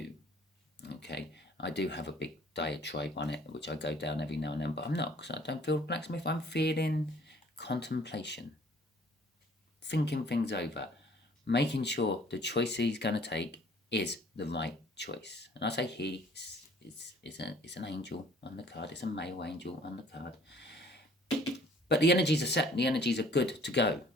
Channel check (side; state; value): both; normal; correlation 0.55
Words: Okay. I do have a big diatribe on it, which I go down every now and then, but I'm not, because I don't feel blacksmith. I'm feeling contemplation, thinking things over, making sure the choice he's going to take is the right choice. And I say he is an angel on the card. It's a male angel on the card. But the energies are set. The energies are good to go